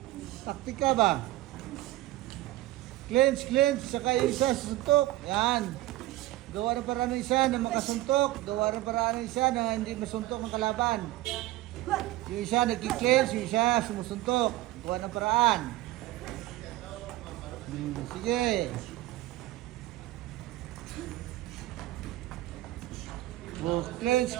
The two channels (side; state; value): left; quieter; 16.7 dB